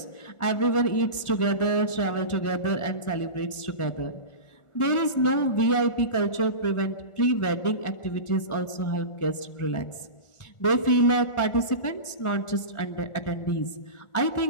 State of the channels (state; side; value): late; right; 1.4 ms